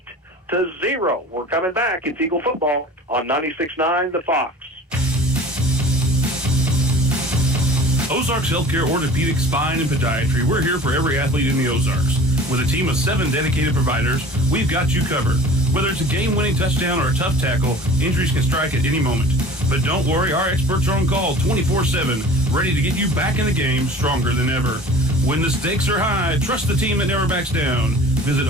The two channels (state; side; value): normal; both; correlation 0.43